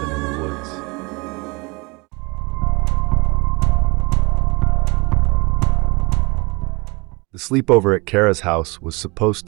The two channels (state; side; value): quieter; left; 26.7 dB